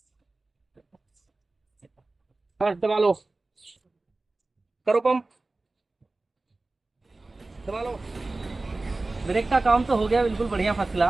बस दबा लो, करो पंप, दबा लो। ब्रेक का काम तो हो गया बिल्कुल बढ़िया, फर्स्ट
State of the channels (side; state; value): left; quieter; 3.2 dB